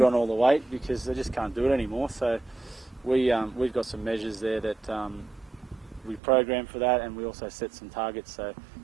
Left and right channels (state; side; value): drops out; left; at 6.2 s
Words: on all the weight, because they just can't do it anymore. So we've got some measures there that we program for that, and we also set some targets. So